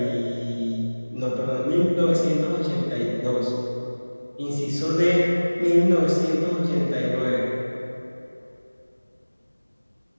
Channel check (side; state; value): both; inverted; correlation -1.00